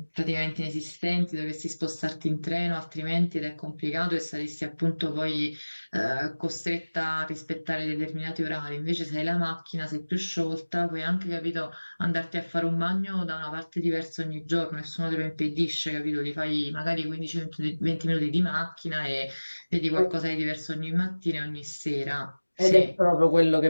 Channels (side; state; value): both; inverted; correlation -1.00